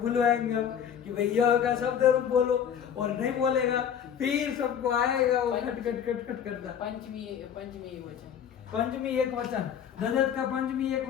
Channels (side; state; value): right; quieter; 8.5 dB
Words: बुलवाएंगे हम कि भाई यह का शब्द रूप बोलो, और नहीं बोलेगा फिर सबको आएगा वो खट खट खट खट करता। पंचमी एक वचन। पंचमी एक वचन, ददत का पंचमी एक